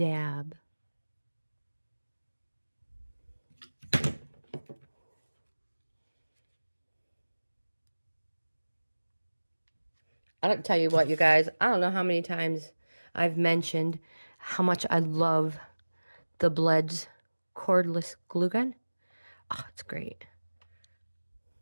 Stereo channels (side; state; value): both; inverted; correlation -1.00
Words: I don't tell you what, you guys. I don't know how many times I've mentioned how much I love the Bleds cordless glue gun. Oh, it's great.